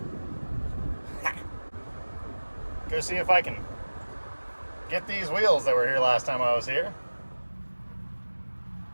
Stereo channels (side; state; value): both; inverted; correlation -1.00